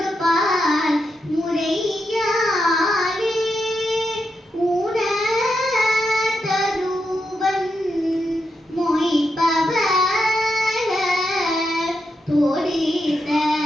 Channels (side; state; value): both; normal; correlation 0.84